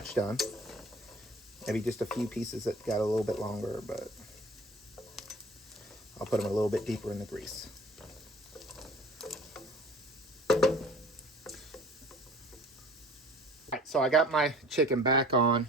done. Maybe just a few pieces that got a little bit longer, but I'll put them a little bit deeper in the grease. Alright, so I got my chicken back on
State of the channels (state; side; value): normal; both; correlation 0.47